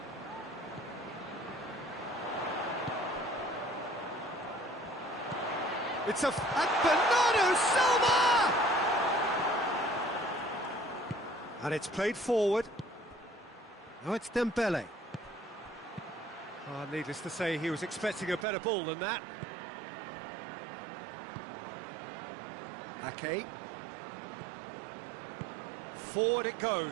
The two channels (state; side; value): drops out; left; at 18.4 s